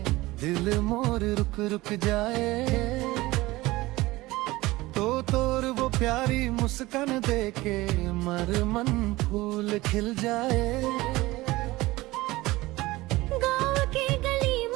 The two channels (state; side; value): quieter; left; 19.5 dB